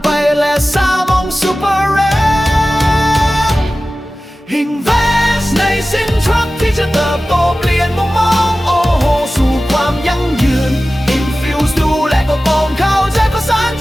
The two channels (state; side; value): normal; both; correlation 0.96